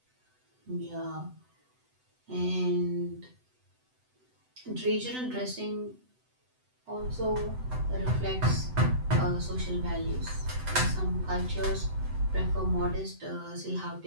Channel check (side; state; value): left; late; 7.9 ms